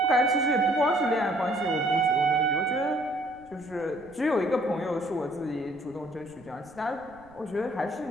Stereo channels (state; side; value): noise; right; rumble, 27 dB below the sound